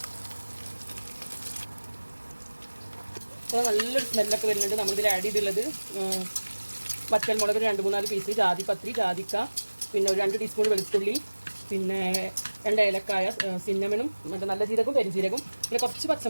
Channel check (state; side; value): inverted; both; correlation -1.00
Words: അപ്പോൾ നല്ലൊരു സ്മെല്ലൊക്കെ വരുന്നുണ്ട്. നമ്മളിതിൽ ആഡ് ചെയ്തുള്ളത് വറ്റൽമുളക് 2-3 പീസ്, ജാതിപത്രി, ജാതിക്ക, പിന്നെ ഒരു 2 ടീസ്പൂൺ വെളുത്തുള്ളി, പിന്നെ 2 ഏലക്കായ, സിന്നമനും മറ്റേ നല്ല ജീരകവും പെരുംജീരകവും, പിന്നെ കുറച്ച്